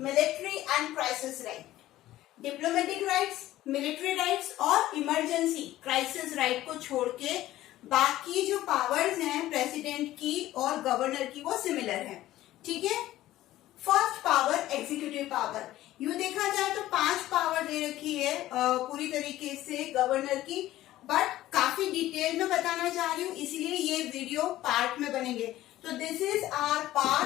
and crisis right. Diplomatic rights, military rights और इमरजेंसी क्राइसिस राइट को छोड़ के बाकी जो पावर्स हैं प्रेसिडेंट की और गवर्नर की वो सिमिलर है. ठीक है. First power executive power. यूं देखा जाए तो 5 पावर दे रखी है पूरी तरीके से गवर्नर की, बट काफी डिटेल में बताना चाह रही हूँ, इसलिए ये वीडियो पार्ट में बनेंगे. तो this is our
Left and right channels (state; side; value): quieter; right; 15.0 dB